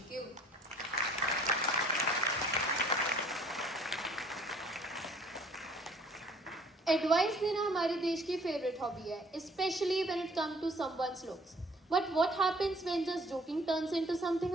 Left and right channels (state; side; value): normal; both; correlation 0.56